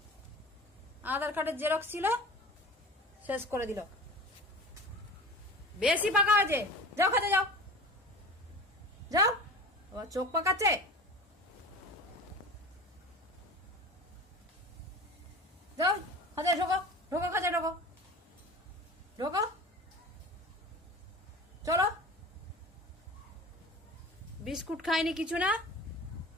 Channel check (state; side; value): normal; both; correlation 0.36